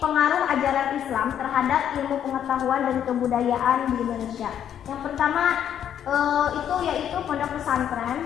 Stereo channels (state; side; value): quieter; right; 9.6 dB